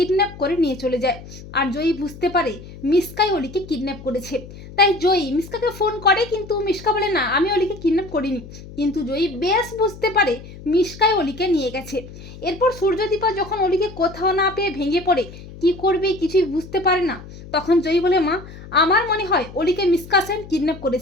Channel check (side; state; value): left; noise; hum, 16 dB below the sound